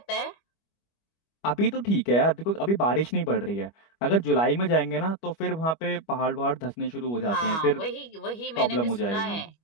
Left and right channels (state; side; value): late; right; 25 ms